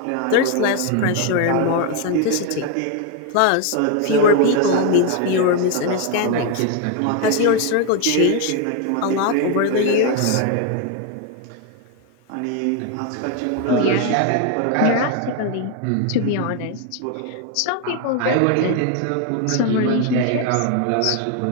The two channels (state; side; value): different; both; correlation 0.01